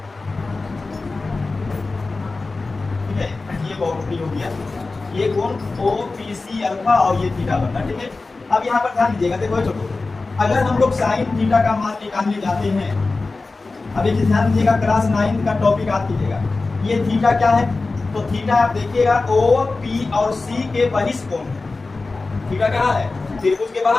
ठीक है, ये बहुत हो गया, ये कोण ओ पी सी अल्फा और ये थीटा बनना। ठीक है, अब यहाँ पर ध्यान दीजिएगा। देखो छोटो, अगर हम लोग साइन थीटा का मान निकालने जाते हैं, अब एक ध्यान दीजिएगा, क्लास 9 का टॉपिक याद कीजिएगा। ये थीटा क्या है, तो थीटा आप देखिएगा ओ पी और सी के बहिष्ठ कोण है। थीटा कहाँ है, त्रिभुज के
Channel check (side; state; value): right; quieter; 3.6 dB